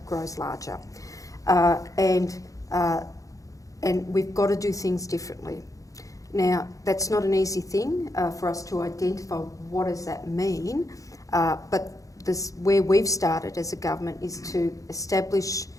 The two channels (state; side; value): late; right; 0.16 ms